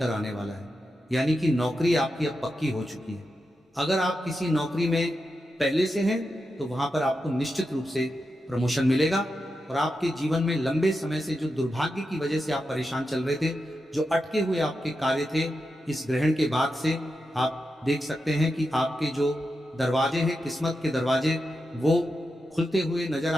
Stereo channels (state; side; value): normal; both; correlation 0.88